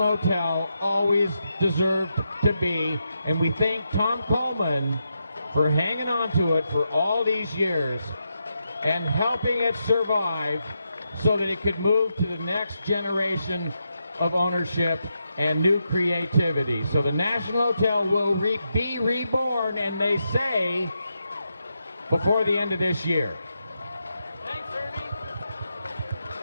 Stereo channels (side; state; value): both; inverted; correlation -0.84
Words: Hotel always deserved to be. And we thank Tom Coleman for hanging on to it for all these years and helping it survive so that it could move to the next generation of ownership and new creativity. So the National Hotel will be reborn, and they say before the end of this year. Thanks, Ernie.